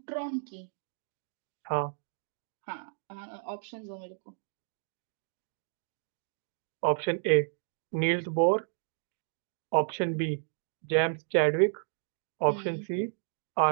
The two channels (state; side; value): silent; left; digital silence